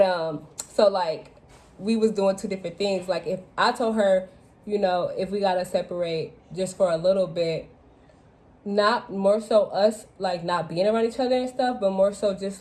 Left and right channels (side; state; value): both; identical; correlation 1.00